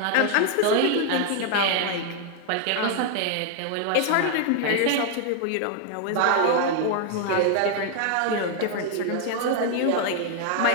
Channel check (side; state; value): both; different; correlation 0.00